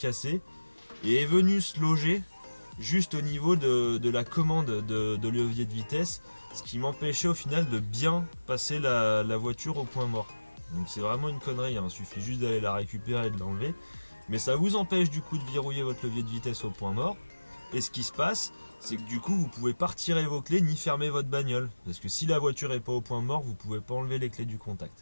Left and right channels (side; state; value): both; inverted; correlation -1.00